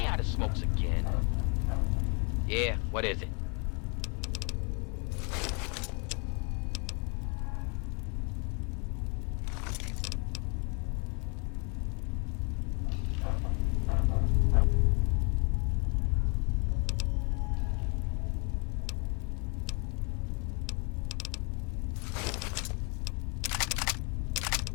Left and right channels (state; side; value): quieter; right; 34.8 dB